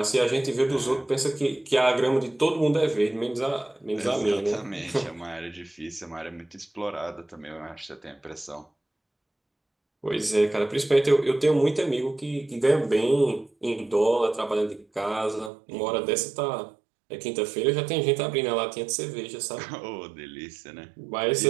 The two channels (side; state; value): left; drops out; at 15.5 s